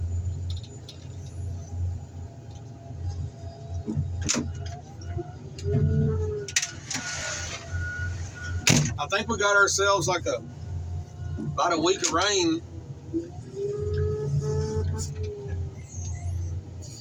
I think we got ourselves like about a week of rain.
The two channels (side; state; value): both; identical; correlation 1.00